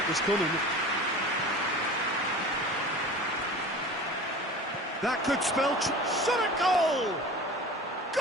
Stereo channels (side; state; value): both; normal; correlation 0.37